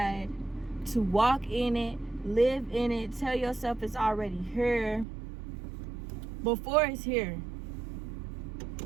to walk in it, live in it, tell yourself it's already here before it's here.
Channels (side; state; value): left; drops out; at 5.1 s